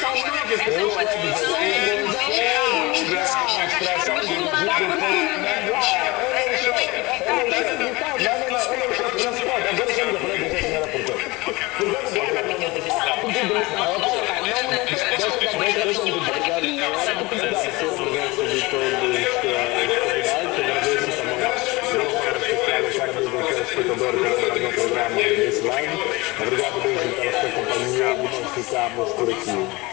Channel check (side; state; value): right; quieter; 22.9 dB